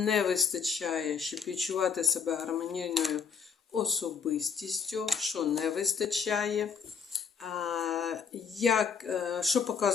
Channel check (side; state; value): right; quieter; 6.4 dB